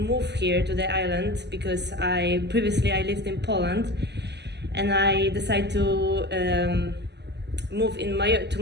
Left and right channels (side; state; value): left; late; 0.50 ms